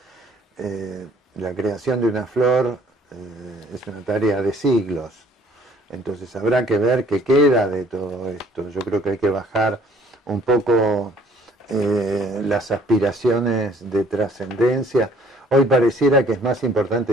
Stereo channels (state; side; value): normal; both; correlation 0.58